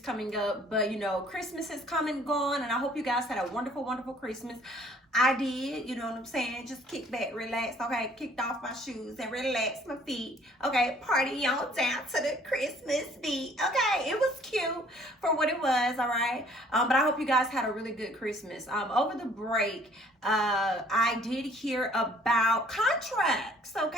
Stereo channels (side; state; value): both; normal; correlation 0.58